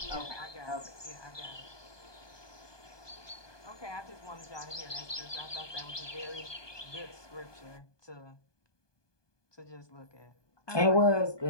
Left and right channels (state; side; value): late; right; 1.2 ms